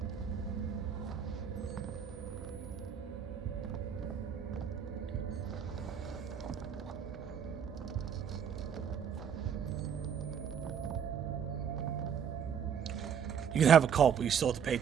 You can have a cult, but you still have to pay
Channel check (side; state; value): left; quieter; 7.8 dB